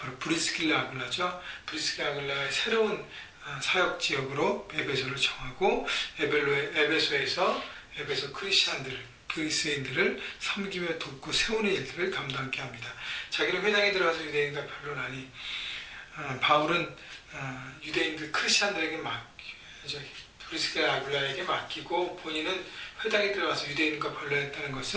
브리스길라 아굴라죠. 브리스길라 아굴라의 새로운 사역 지역으로 에베소를 정하고 에베소에서 에베소 그리스인들을 섬기며 돕고 세우는 일들을 감당하게 합니다. 자기는 회당에 들어가서 유대인과 변론하니 바울은 유대인들 크리스찬들에게 브리스길라 아굴라에게 맡기고 본인은 회당에 들어가서 유대인과 변론했다는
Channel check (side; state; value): both; identical; correlation 1.00